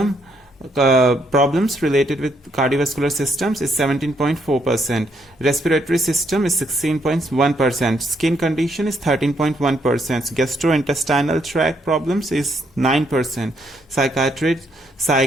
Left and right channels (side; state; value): both; normal; correlation 0.73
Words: problems related with cardiovascular systems is 17.4%. Respiratory system is 16.1%. Skin condition is 13.1%. Gastrointestinal tract problems is 9%.